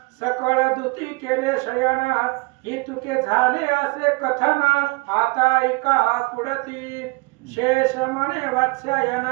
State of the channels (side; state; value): left; quieter; 26.8 dB